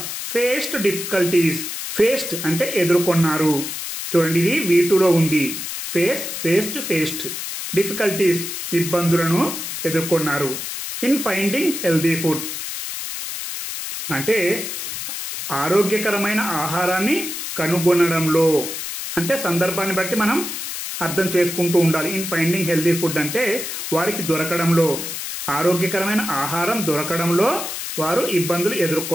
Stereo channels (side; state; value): left; noise; hiss, 6 dB below the sound